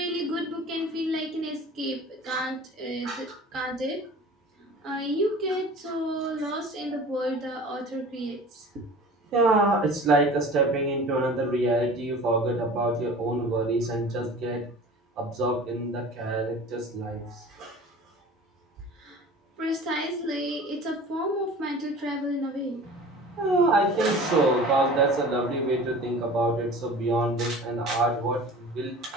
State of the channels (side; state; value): both; normal; correlation 0.41